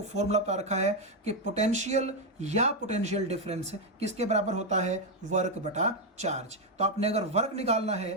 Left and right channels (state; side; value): normal; both; correlation 0.04